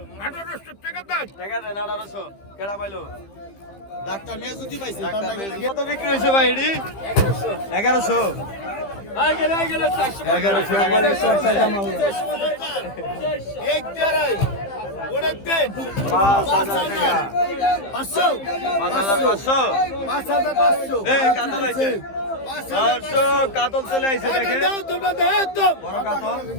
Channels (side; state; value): right; late; 15 ms